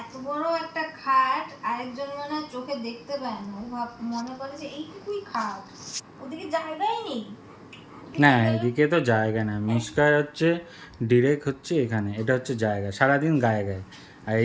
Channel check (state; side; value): identical; both; correlation 1.00